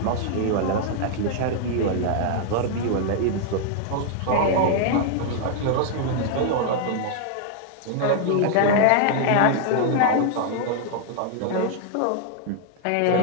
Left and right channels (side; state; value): both; different; correlation 0.00